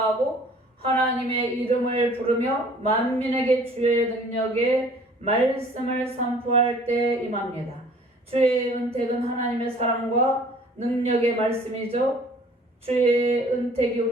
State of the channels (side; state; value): both; normal; correlation 0.52